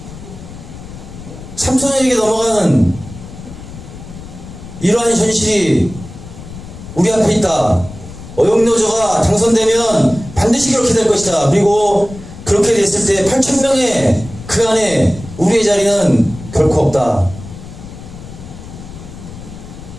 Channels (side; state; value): left; noise; rumble, 14 dB below the sound